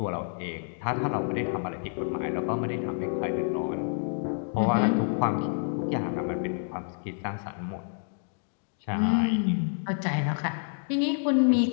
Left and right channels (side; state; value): right; silent; digital silence